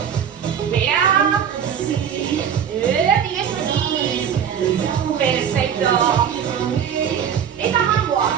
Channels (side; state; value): left; quieter; 8.3 dB